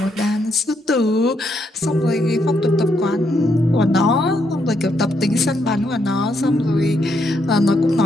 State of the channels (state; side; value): normal; both; correlation 0.77